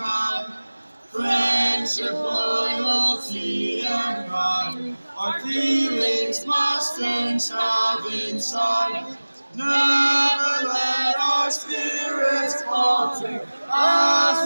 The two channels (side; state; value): both; inverted; correlation -1.00